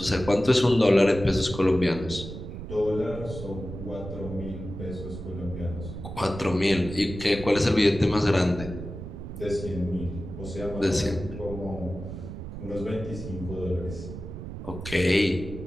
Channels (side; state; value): right; noise; rumble, 9 dB below the sound